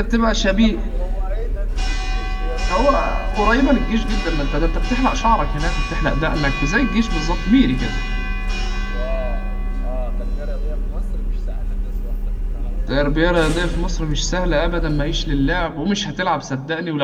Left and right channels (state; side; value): identical; both; correlation 1.00